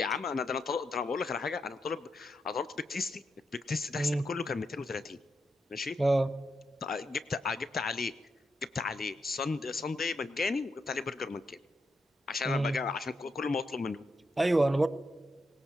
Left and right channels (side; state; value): both; normal; correlation 0.83